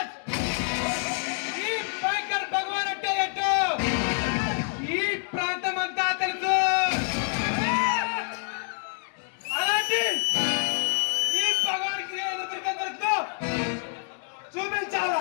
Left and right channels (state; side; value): silent; right; 60 dB below the other